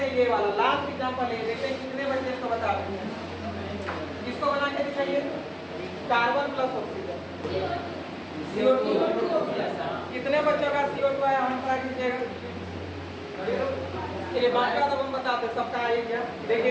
हैं, ये वाला लास्ट एग्जांपल है, देखते हैं कितने बच्चे इसको बता रहे हैं। इसको बना के दिखाइए। कार्बन प्लस ऑक्सीजन CO2, कितने बच्चों का CO2 आया? हम ट्राई कीजिएगा। चलिए बात का तो हम बताते सबका आइए क्या,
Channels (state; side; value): identical; both; correlation 1.00